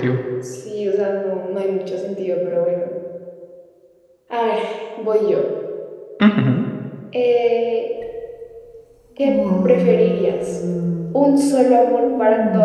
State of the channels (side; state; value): both; identical; correlation 1.00